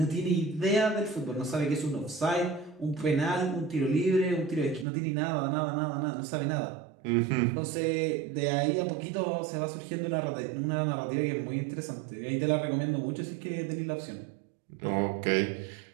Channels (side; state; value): left; drops out; at 4.9 s